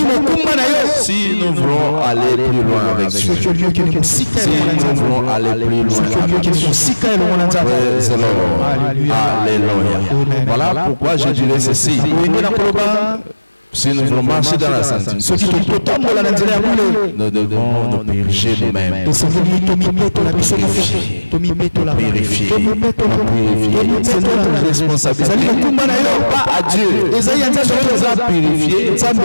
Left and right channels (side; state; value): both; inverted; correlation -1.00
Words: Si nous voulons aller plus loin avec Dieu. Si nous voulons aller plus loin avec Dieu. Alléluia. Voilà pourquoi je dirais ceci. Si nous voulons marcher dans la sanctification, nous devons nous purifier nous-mêmes. Purifier. C'est notre responsabilité. Pas à Dieu. Dieu nous a purifiés